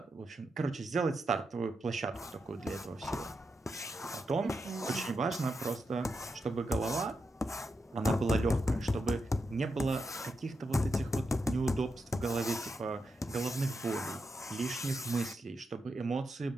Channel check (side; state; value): both; normal; correlation 0.86